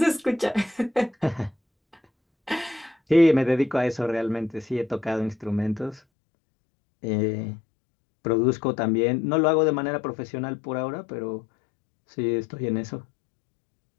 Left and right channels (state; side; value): drops out; right; at 6.0 s